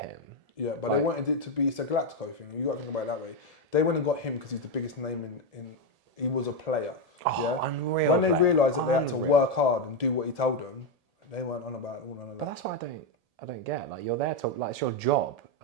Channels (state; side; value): late; left; 1.7 ms